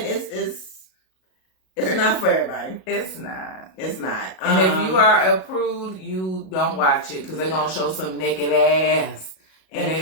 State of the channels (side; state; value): right; late; 38 ms